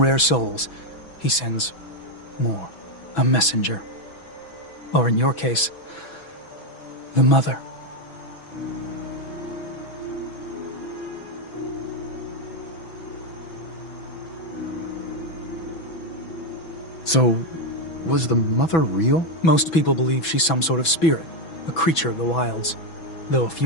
souls, he sends more. A messenger. Or in your case, the Mother. So, was the Mother real? Most people believe she's some sort of spirit, a creature of the wilds, though a few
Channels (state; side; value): late; right; 6.1 ms